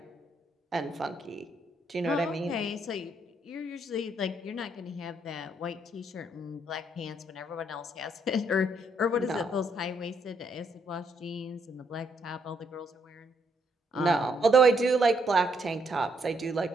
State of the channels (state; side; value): normal; both; correlation 0.73